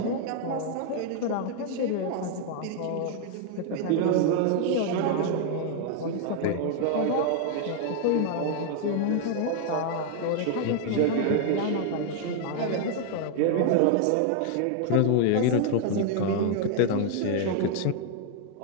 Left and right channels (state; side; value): different; both; correlation 0.00